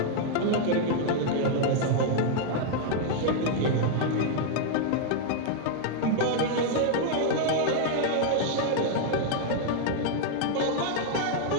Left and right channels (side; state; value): both; different; correlation 0.00